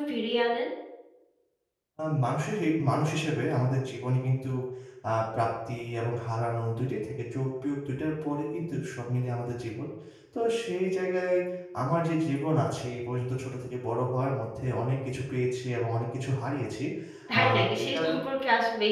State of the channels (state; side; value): identical; both; correlation 1.00